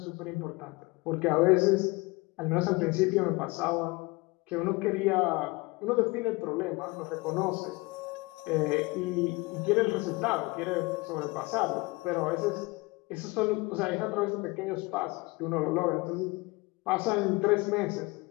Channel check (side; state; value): right; quieter; 24.3 dB